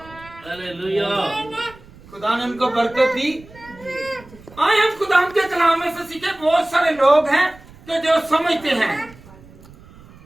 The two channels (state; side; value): noise; right; rumble, 22 dB below the sound